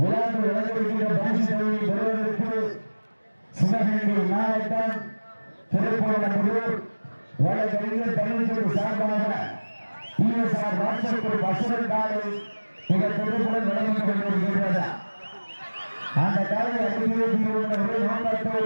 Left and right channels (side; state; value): both; inverted; correlation -1.00